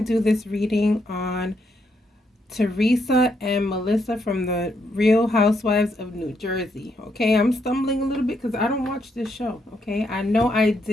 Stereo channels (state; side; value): normal; both; correlation 0.77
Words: do this reading on Teresa and Melissa from the Real Housewives of New Jersey. Okay, I'm stumbling a little bit because I don't watch this show. Okay, I know I